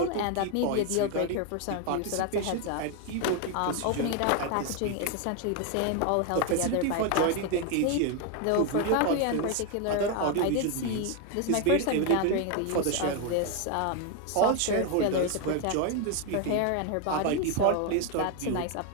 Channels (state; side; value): different; both; correlation 0.01